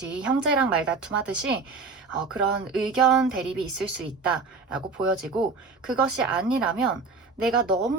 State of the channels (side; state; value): left; quieter; 4.2 dB